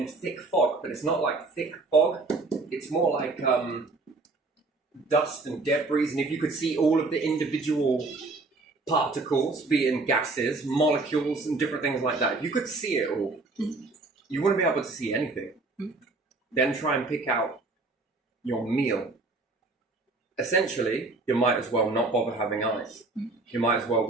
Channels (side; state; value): left; quieter; 3.5 dB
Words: thick fog, but it's not like thick fog. It's more like dust and debris. And if you could see all of the individual particles, being gases, molecules, and different things like that, if you could see it all, you wouldn't be able to see anything. Then try and pick out your meal. Essentially, you might as well not bother having eyes. You might as well